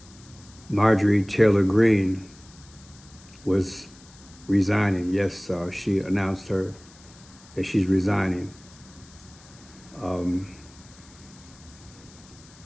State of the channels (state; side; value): noise; left; hiss, 24 dB below the sound